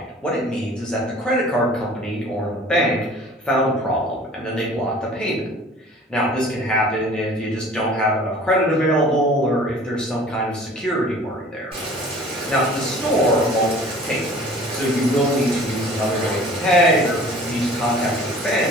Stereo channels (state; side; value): normal; both; correlation 0.47